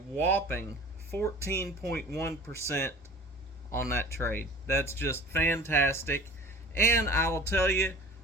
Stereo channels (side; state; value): both; normal; correlation 0.41